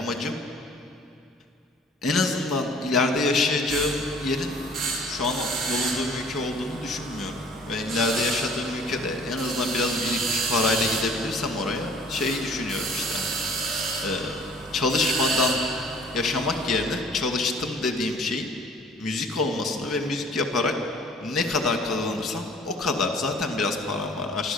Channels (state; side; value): normal; both; correlation 0.52